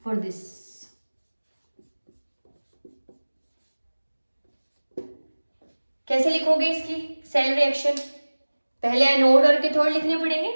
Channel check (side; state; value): both; inverted; correlation -1.00